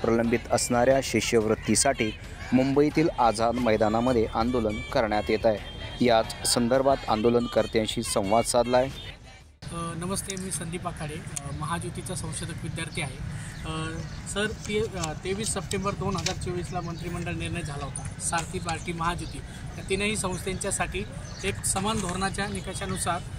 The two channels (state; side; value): identical; both; correlation 1.00